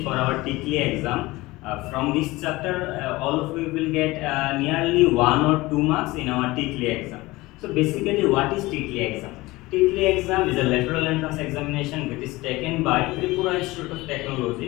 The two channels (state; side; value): quieter; right; 20.4 dB